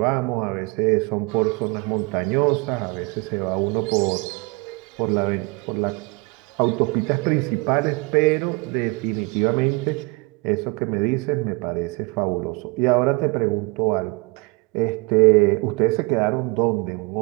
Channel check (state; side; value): quieter; left; 28.1 dB